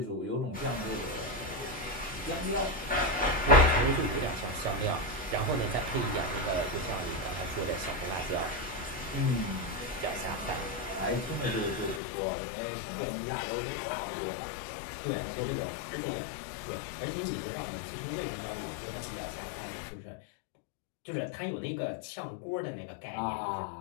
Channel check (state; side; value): drops out; right; at 12.0 s